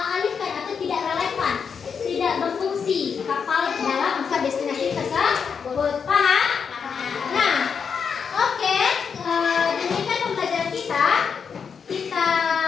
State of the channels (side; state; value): right; quieter; 6.4 dB